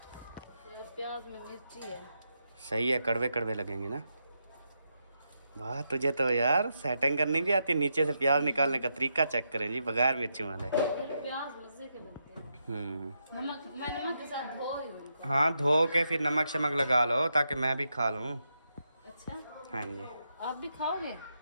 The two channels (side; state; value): both; inverted; correlation -0.83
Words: प्याज में मिर्ची है। सही है, कड़वे कड़वे लगेंगे ना। वाह तुझे तो यार सेटिंग करनी भी आती है। नीचे से प्याज निकालने का तरीका चेक करें जी, बगैर मिर्ची वाले। प्याज मजे के बनते हैं। नमक, मैं नमक के साथ धो रही हूँ इनको। हाँ धो के फिर नमक शमक लगा लो ताकि मैं भी खा लूँ। अच्छा हाँ जी आप भी खाओगे?